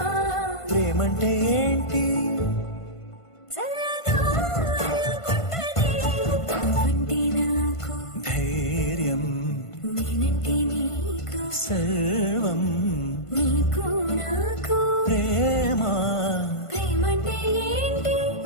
ప్రేమంటే ఏంటి చల్లగా అల్లుకుంటది నువ్వంటే నాకు ధైర్యం నేనంటే నీకు సర్వం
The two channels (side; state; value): right; late; 1.5 ms